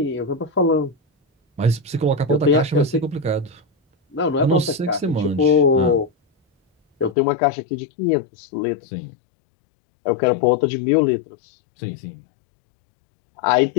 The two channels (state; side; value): drops out; right; at 7.2 s